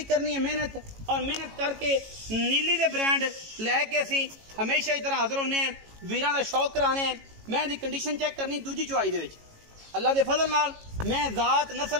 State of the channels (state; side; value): late; left; 18 ms